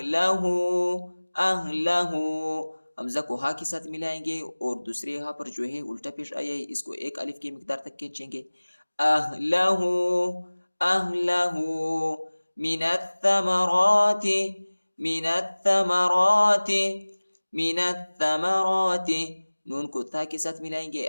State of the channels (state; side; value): inverted; both; correlation -1.00